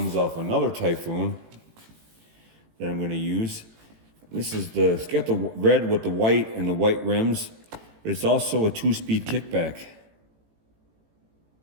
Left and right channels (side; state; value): left; late; 18 ms